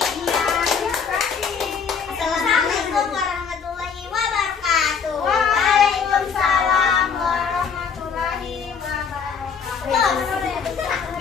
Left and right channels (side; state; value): right; quieter; 6.2 dB